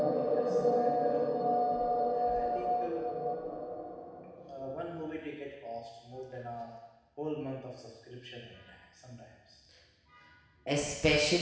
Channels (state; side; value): identical; both; correlation 1.00